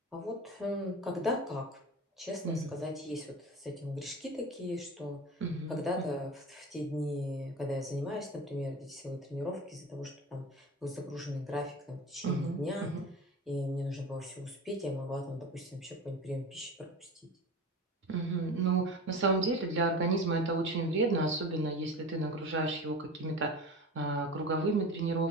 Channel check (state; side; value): normal; both; correlation 0.32